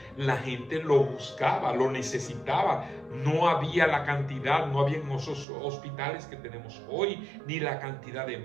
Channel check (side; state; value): left; drops out; at 5.5 s